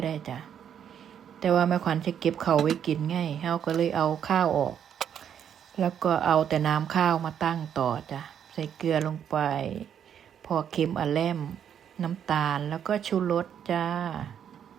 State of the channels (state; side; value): quieter; left; 8.8 dB